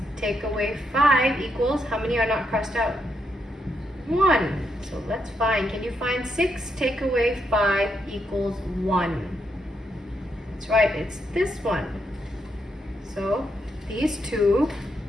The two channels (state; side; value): normal; both; correlation 0.80